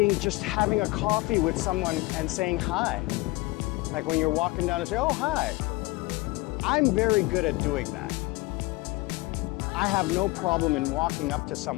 just having a coffee with someone and saying hi. Like when you're walking down and say, oh, hi. I'm very good at doing that. I have no problem in walking up to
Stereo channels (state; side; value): quieter; right; 22.4 dB